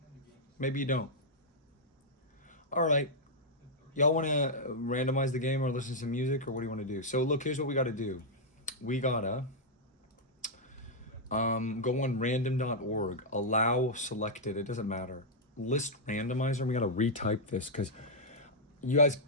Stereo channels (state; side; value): normal; both; correlation -0.05